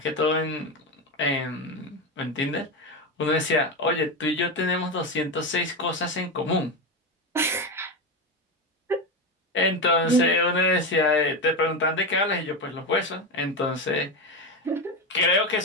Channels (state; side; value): normal; both; correlation 0.16